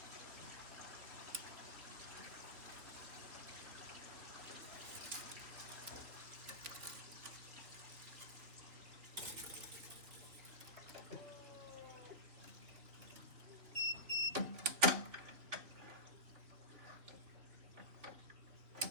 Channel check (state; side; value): late; left; 3.6 ms